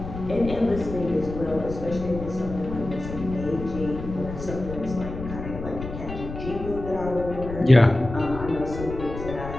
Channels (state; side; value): noise; left; rumble, 9 dB below the sound